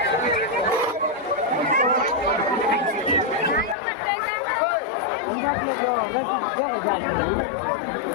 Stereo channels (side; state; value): right; drops out; at 3.8 s